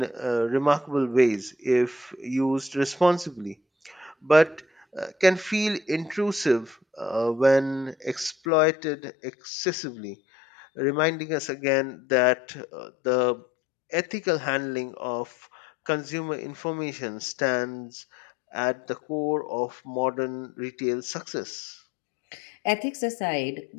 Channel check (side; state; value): right; drops out; at 8.3 s